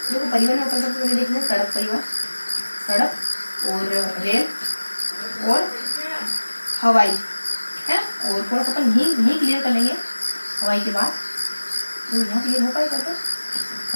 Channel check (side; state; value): both; inverted; correlation -1.00